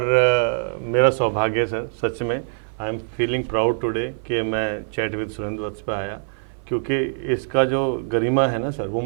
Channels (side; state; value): left; silent; 56 dB below the other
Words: मेरा सौभाग्य है सर, सच में I am feeling proud today कि मैं चैट विद सुरेंद्र वत्स पे आया, क्योंकि इसका जो गरिमा है ना सर, वो